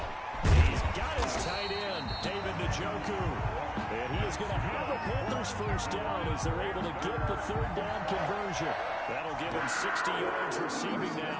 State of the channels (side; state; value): both; identical; correlation 1.00